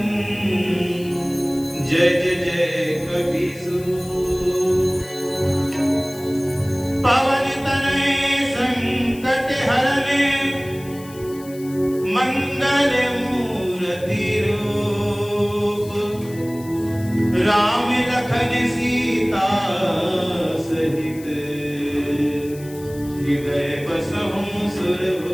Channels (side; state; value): left; noise; hiss, 20 dB below the sound